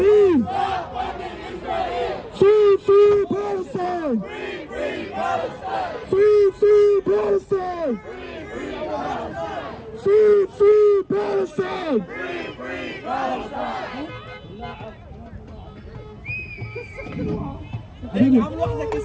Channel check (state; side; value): identical; both; correlation 1.00